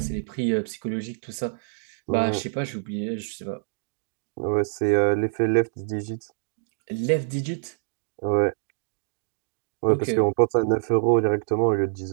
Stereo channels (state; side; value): silent; left; digital silence